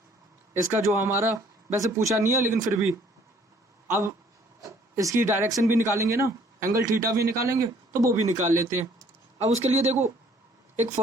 इसका जो हमारा, वैसे पूछा नहीं है लेकिन फिर भी अब इसकी डायरेक्शन भी निकालेंगे ना, एंगल थीटा भी निकालेंगे, तो वो भी निकाल लेते हैं। अब उसके लिए देखो एक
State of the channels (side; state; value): both; normal; correlation 0.59